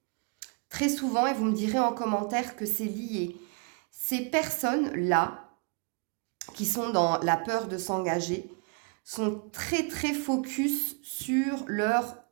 très souvent, et vous me direz en commentaire que c'est lié. Ces personnes-là, qui sont dans la peur de s'engager, sont très très focus sur leur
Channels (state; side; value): quieter; left; 34.2 dB